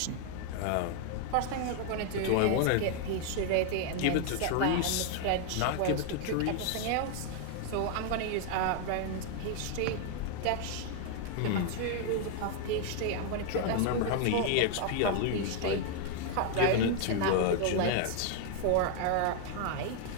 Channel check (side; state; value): both; different; correlation 0.00